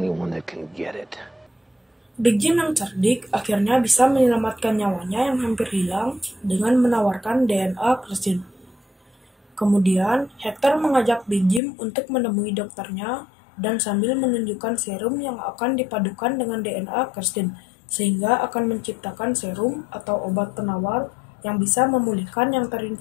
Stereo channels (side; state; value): right; drops out; at 11.6 s